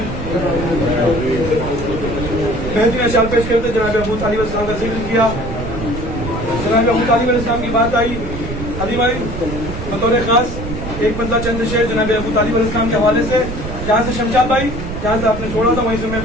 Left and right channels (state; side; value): noise; right; rumble, 7 dB below the sound